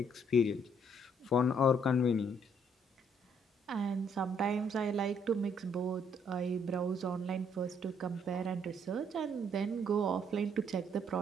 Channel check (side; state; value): both; normal; correlation 0.67